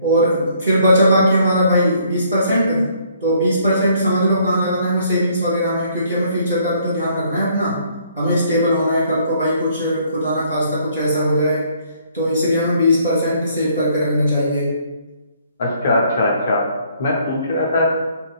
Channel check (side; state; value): both; inverted; correlation -0.64